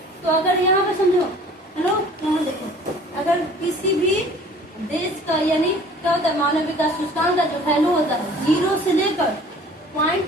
तो अगर यहाँ पे समझो, हेलो यहाँ देखो, अगर किसी भी देश का यानी क्या होता है मानव विकास सूचकांक का जो वैल्यू होता है 0 से लेकर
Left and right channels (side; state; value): both; normal; correlation 0.49